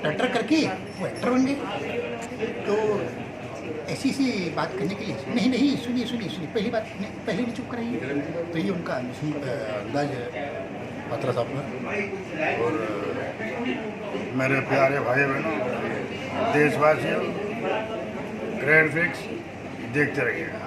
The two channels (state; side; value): identical; both; correlation 1.00